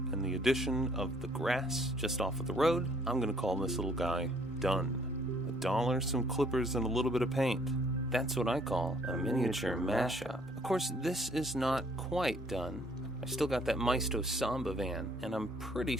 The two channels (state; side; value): noise; right; hum, 25 dB below the sound